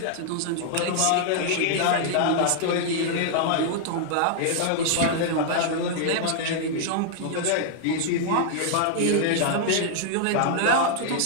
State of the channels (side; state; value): both; different; correlation -0.01